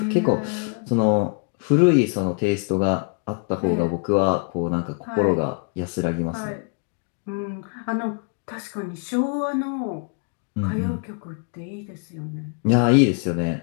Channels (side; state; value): right; quieter; 38.6 dB